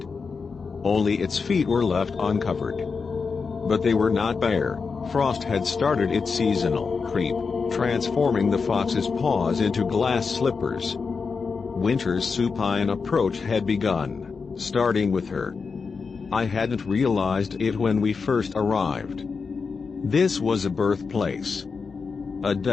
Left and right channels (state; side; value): quieter; right; 5.1 dB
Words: Only its feet were left uncovered. But they were not bare. Frost had started its seasonal creep, transforming the fox's paws into glass slippers. Winter's supine approach had begun, starting with her. I hadn't realized it when we first arrived. This was a birthplace. A